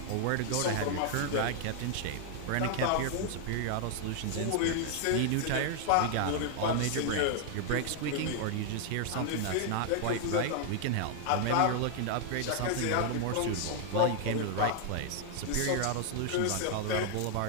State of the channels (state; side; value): different; both; correlation 0.00